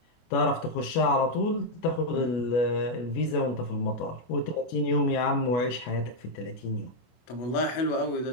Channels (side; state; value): right; late; 24 ms